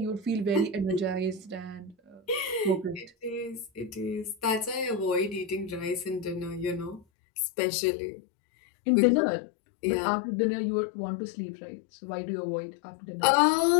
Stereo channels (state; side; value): drops out; right; at 7.1 s